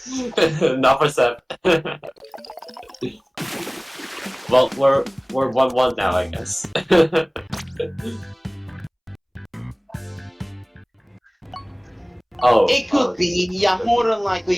Not for Seth. Well, we're 1-1 now, I guess. Oh, It could be, yeah, more than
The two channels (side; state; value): both; identical; correlation 1.00